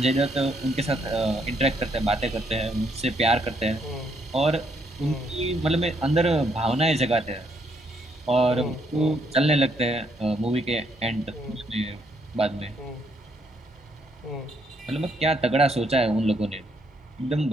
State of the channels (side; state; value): both; normal; correlation 0.72